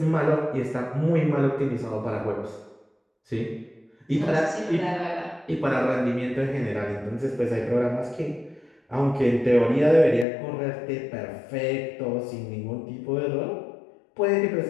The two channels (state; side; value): drops out; right; at 10.2 s